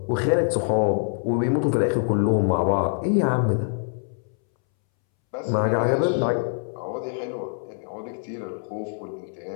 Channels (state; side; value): silent; right; 62 dB below the other